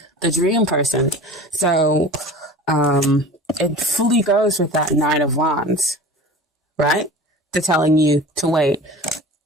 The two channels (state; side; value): normal; both; correlation 0.38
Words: The dream person. So, it fully goes with that Nine of Wands, right? To telling you to wait.